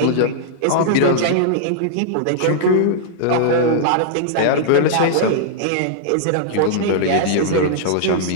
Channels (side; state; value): both; different; correlation -0.01